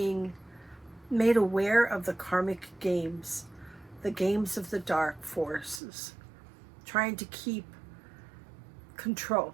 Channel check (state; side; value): drops out; left; at 5.8 s